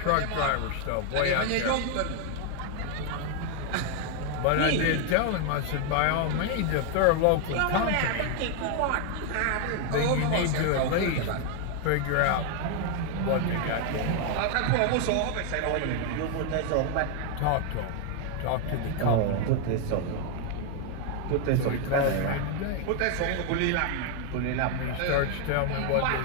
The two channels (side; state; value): both; different; correlation 0.01